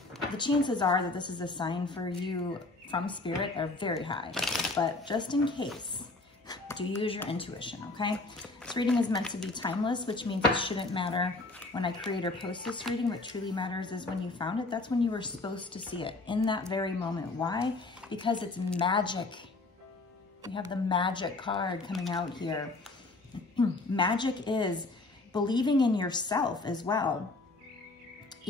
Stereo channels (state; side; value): quieter; right; 3.2 dB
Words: the chances are that this is a sign for you from spirit are very high. But just in case, do use your intuition, okay? This reading is meant to be timeless, which means it shouldn't matter when I create or post this reading. What truly matters is when you found it. That's when you were supposed to see it, in that very moment. Why? Because it's magic. We have the magic card coming out here. Magic is believing in yourself as well.